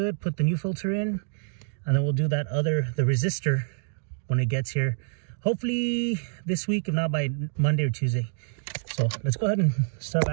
put the new filter in, and then we'll do the resistor when it gets here. Hopefully this week, if not by Monday or Tuesday. So let's go ahead and start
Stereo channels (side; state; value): left; silent; digital silence